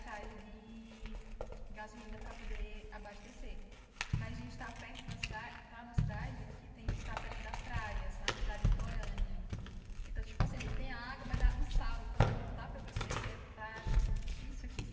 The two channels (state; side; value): identical; both; correlation 1.00